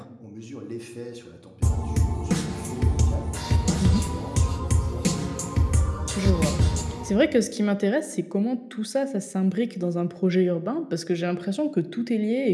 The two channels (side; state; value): both; identical; correlation 1.00